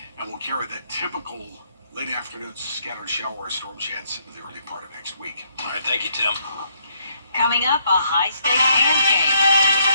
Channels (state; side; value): inverted; both; correlation -0.71